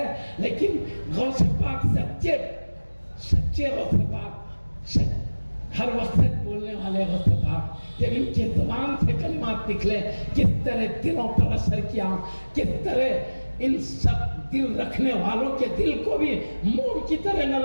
لیکن غوث پاک سچے غوث پاک, ہر وقت بولنے والے غوث پاک, جب ان کی زبان سے کلمات نکلے کس طرح دلوں پر اثر کیا, کس طرح ان سب دل رکھنے والوں کے دل کو بھی موم کی طرح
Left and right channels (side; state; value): both; inverted; correlation -1.00